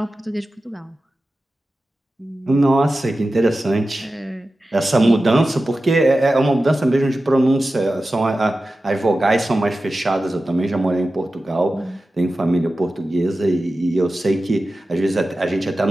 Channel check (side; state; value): both; normal; correlation 0.94